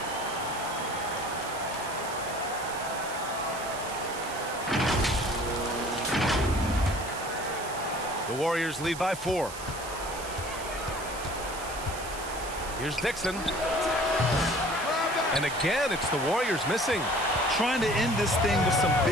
The Warriors lead by 4. Here's Dixon. And again, it's the Warriors missing. Trying to end this thing with some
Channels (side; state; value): right; noise; hiss, 12 dB below the sound